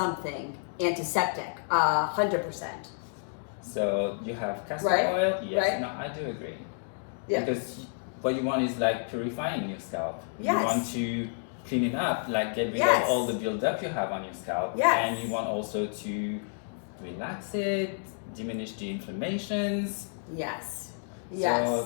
antiseptic, 100%. So you have castor Right, oil. Yes, right. no, I do agree. Yeah. Because what you want is like purifying your scalp. Yes. You want to clean it up, like get rid Yes. of all the buildup you have on your scalp. Yes. And you want also to relax it, diminish the inflammations. Yes. Yes.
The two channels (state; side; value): silent; right; digital silence